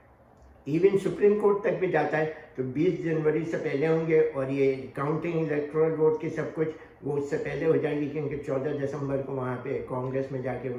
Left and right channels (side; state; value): both; identical; correlation 1.00